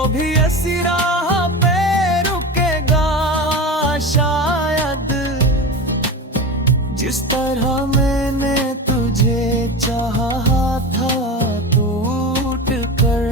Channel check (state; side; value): normal; both; correlation 0.26